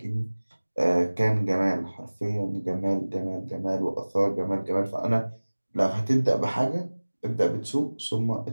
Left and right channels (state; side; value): inverted; both; correlation -1.00